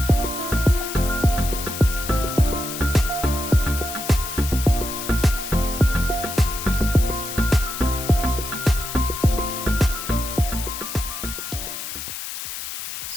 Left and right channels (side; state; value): left; noise; hiss, 7 dB below the sound